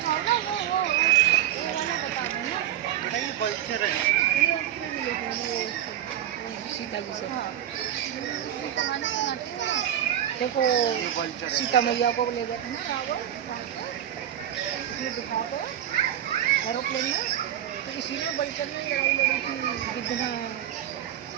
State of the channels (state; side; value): quieter; left; 11.1 dB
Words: देखो सीता मैया को ले गए थे ना दिखाते एरोप्लेन में, तो इसी में बल्चर में लड़ाई लड़ी थी गिद्ध में।